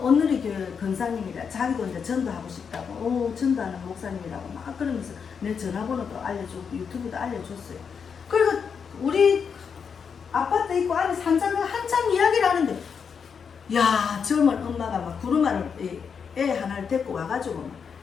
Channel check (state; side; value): quieter; right; 6.4 dB